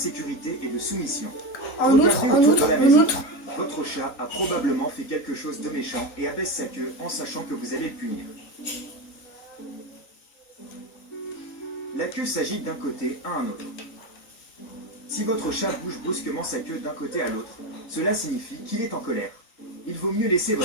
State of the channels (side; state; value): right; late; 3.9 ms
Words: et de soumission. En outre, Regardez en autour outre, de la en maison. outre. Votre chat a probablement fait quelque chose de méchant et abaisse sa queue en sachant que vous allez le punir. La queue s'agite d'un côté à un autre. Si votre chat bouge brusquement sa queue d'un côté à l'autre, cela signifie qu'il est en colère. il vaut mieux laisser